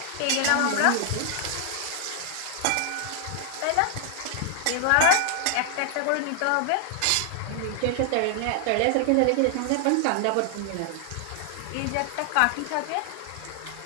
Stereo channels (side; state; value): both; different; correlation 0.00